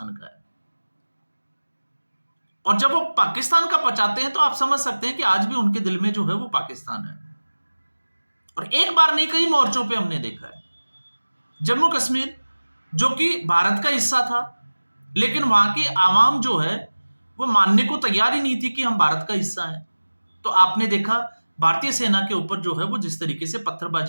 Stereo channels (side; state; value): both; inverted; correlation -1.00